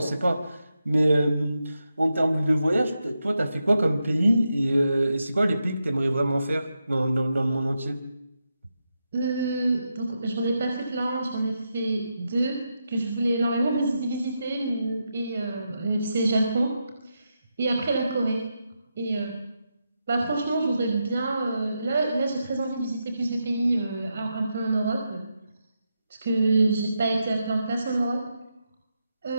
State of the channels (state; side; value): inverted; both; correlation -0.86